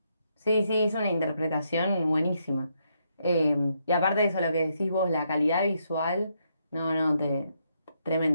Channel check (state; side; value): inverted; both; correlation -0.77